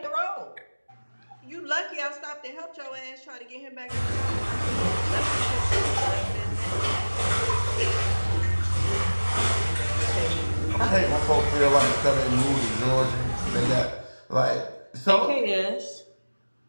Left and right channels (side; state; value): both; inverted; correlation -1.00